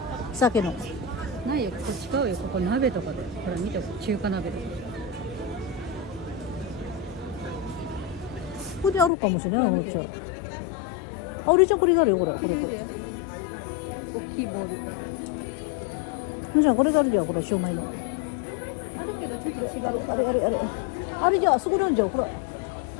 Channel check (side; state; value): right; drops out; at 9.1 s